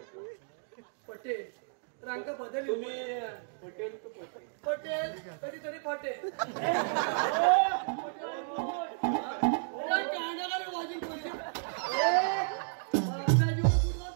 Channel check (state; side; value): silent; left; digital silence